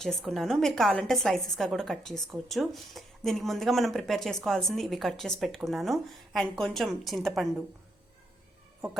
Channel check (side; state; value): both; normal; correlation 0.78